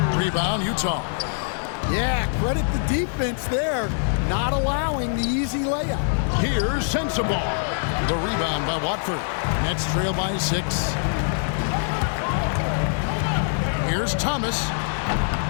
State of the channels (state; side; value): silent; right; digital silence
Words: Rebound, Utah. Yeah, credit the defense there, not allowing the easy layup. Here's Sensabaugh. The rebound by Watford. Nets trail by 6. Here's Thomas.